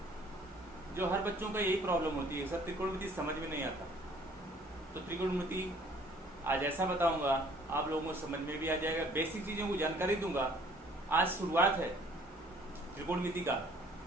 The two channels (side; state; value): both; normal; correlation 0.57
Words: जो हर बच्चों का यही प्रॉब्लम होती है, सर त्रिकोणमिति समझ में नहीं आता। तो त्रिकोणमिति आज ऐसा बताऊंगा आप लोगों को समझ में भी आ जाएगा, बेसिक चीज़ों को जानकारी दूंगा। आज शुरुआत है त्रिकोणमिति का,